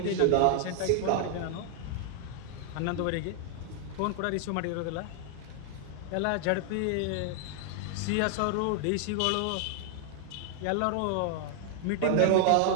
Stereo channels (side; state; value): both; different; correlation 0.00